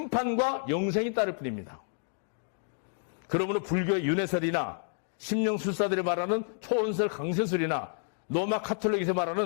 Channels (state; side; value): silent; right; digital silence